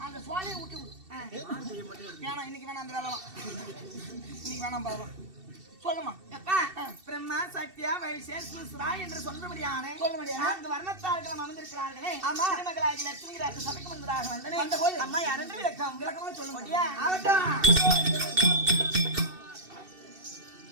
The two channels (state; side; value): late; left; 2.7 ms